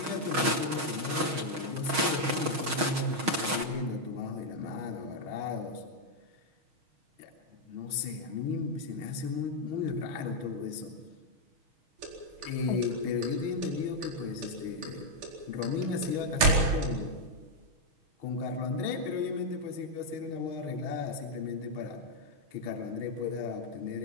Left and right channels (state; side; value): late; left; 6.3 ms